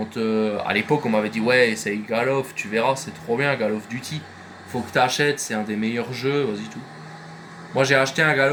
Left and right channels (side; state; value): both; identical; correlation 1.00